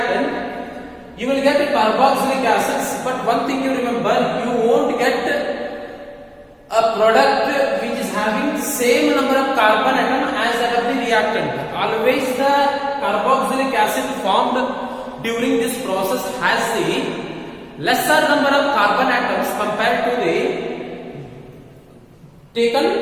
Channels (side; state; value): both; identical; correlation 1.00